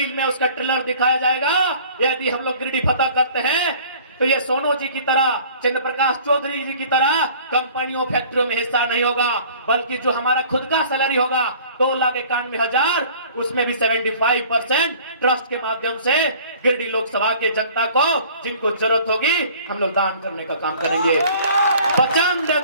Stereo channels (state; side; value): inverted; both; correlation -0.50